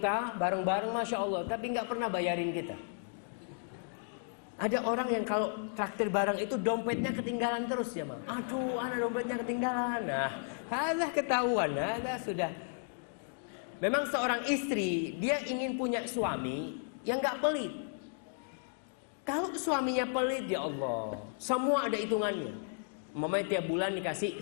bareng-bareng masya Allah, tapi nggak pernah bayarin kita. Ada orang yang kalau traktir bareng itu dompetnya ketinggalan terus ya, Mang. Aduh, anak dompetnya ketinggalan. Nah, ada ketahuan, ada sudah. Memang seorang istri dia ingin punya suami yang nggak pelit. Kalau suaminya pelit, ya Allah, semua ada hitungannya. Umpamanya tiap bulan dikasih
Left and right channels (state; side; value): silent; right; digital silence